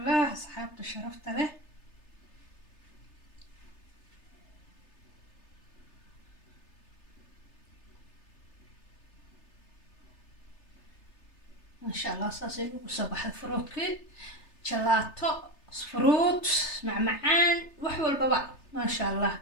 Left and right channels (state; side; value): late; right; 3.3 ms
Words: asxaabta sharafta leh, maasha allah saasay ugu soo baxday fruudkii. jalaato, fruut, macmacaan, wax walbaba maasha allah